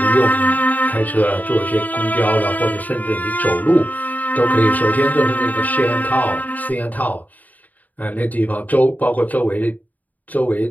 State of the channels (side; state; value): right; late; 0.078 ms